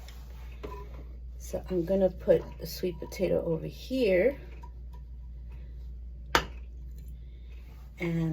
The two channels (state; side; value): identical; both; correlation 1.00